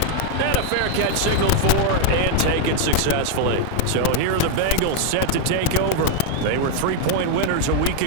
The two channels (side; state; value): both; different; correlation 0.00